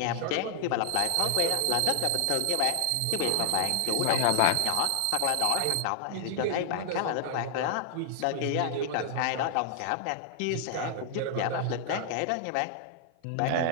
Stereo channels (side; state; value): both; different; correlation 0.00